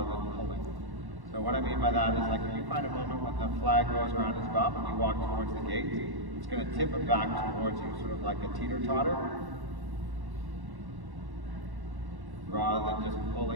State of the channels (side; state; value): left; late; 1.1 ms